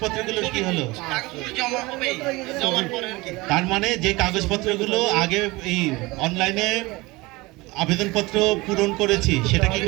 কি হলো? কাগজপত্র জমা হবে, জমার পরে আর কি। তার মানে যে কাগজপত্রগুলো আগে এই অনলাইনে আবেদনপত্র পূরণ করেছি সেটা কি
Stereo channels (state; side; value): quieter; left; 22.3 dB